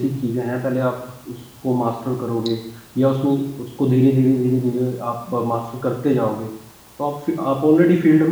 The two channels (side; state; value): both; identical; correlation 1.00